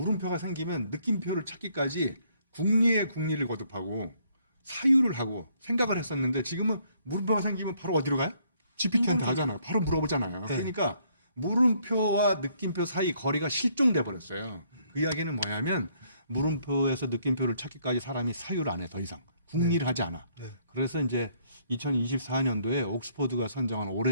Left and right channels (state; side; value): inverted; both; correlation -0.68